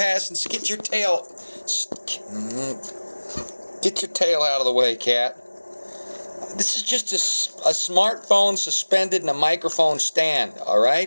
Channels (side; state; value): both; inverted; correlation -1.00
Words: And get your tail. Get your tail out of the way, cat. This is just a smartphone suspended in a microphone stand, all